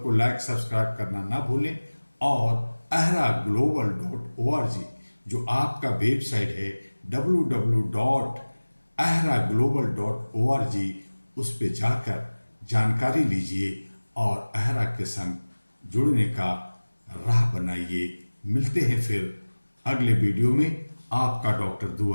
लाइक सब्सक्राइब करना ना भूलें और ahraglobal.org जो आपका वेबसाइट है www.ahraglobal.org, उस पे जाकर जानकारी लीजिए और अहरा के संग जुड़ने का राह बनाइए। मिलते हैं फिर अगले वीडियो में। आपका डॉक्टर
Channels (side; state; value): both; inverted; correlation -1.00